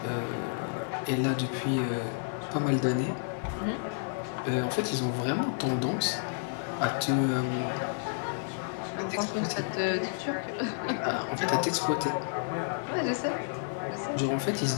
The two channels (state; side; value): silent; right; digital silence